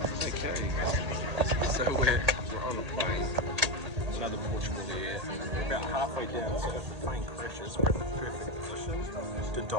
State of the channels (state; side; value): late; left; 1.8 ms